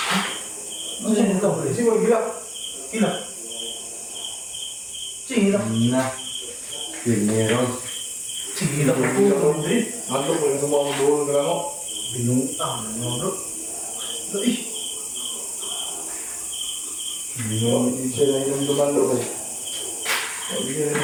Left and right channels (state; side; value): identical; both; correlation 1.00